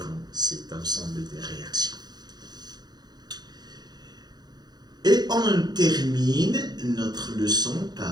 cet ensemble de réactions. Et on termine notre leçon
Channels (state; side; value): late; left; 0.20 ms